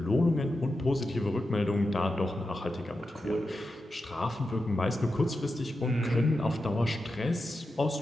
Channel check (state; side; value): normal; both; correlation 0.90